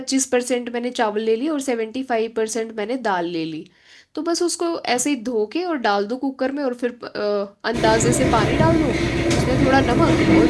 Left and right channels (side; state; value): both; identical; correlation 1.00